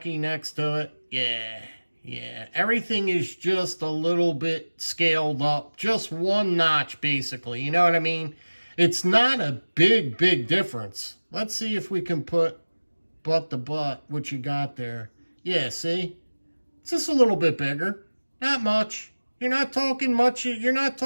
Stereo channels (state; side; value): inverted; both; correlation -1.00